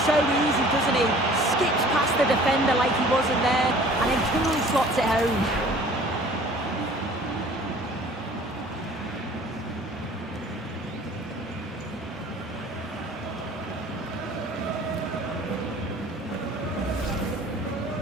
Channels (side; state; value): both; normal; correlation 0.49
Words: so easy, doesn't he? Skips past the defender like he wasn't there, and then coolly slots it home.